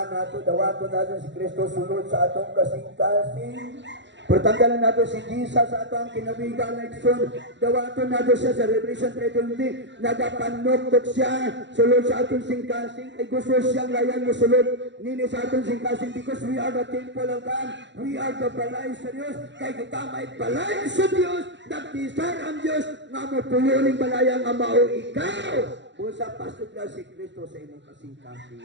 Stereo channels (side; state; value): left; late; 0.53 ms